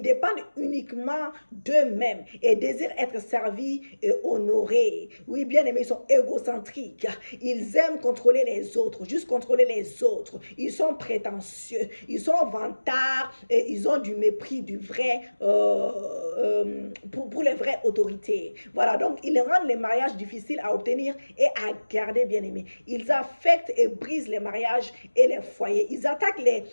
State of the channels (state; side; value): inverted; both; correlation -1.00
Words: dépendent uniquement d'eux-mêmes et désirent être servis et honorés. Oui, bien aimés, ils sont égocentriques. Ils aiment contrôler les autres, juste contrôler les autres. Ils sont prétentieux. Ils sont vantards et ils ont du mépris du vrai pour les vraies autorités. Voilà, donc ils rendent les mariages difficiles à obtenir et à garder, bien aimés. Ils affectent et brisent les mariages et les foyers. Ils attaquent